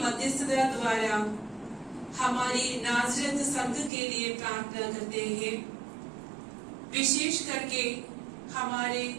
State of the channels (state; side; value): drops out; left; at 3.9 s